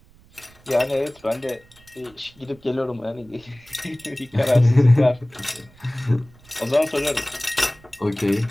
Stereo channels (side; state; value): right; noise; rumble, 27 dB below the sound